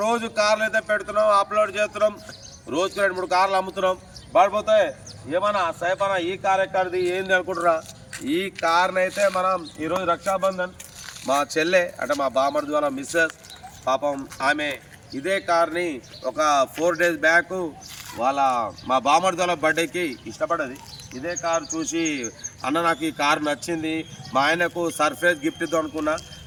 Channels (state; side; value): identical; both; correlation 1.00